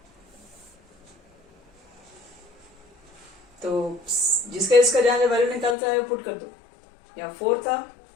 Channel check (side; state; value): right; drops out; at 5.8 s